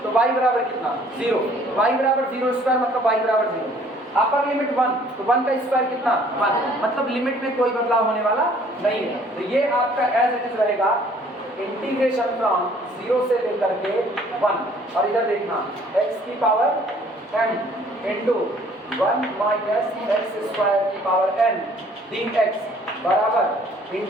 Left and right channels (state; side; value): normal; both; correlation 0.57